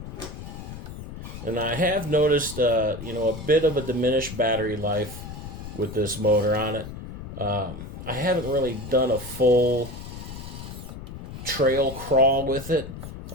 And I have noticed, a bit of a diminished battery life with this motor on it. I haven't really done a full trail crawl with it.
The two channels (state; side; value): noise; left; rumble, 11 dB below the sound